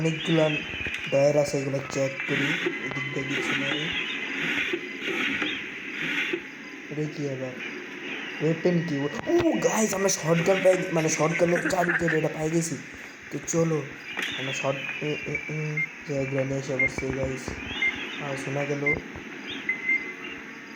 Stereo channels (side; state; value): both; identical; correlation 1.00